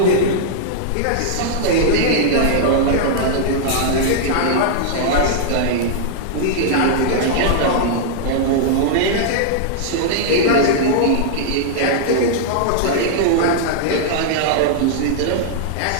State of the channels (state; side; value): different; both; correlation -0.01